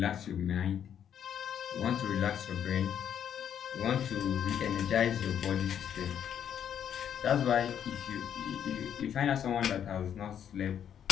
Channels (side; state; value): right; quieter; 9.1 dB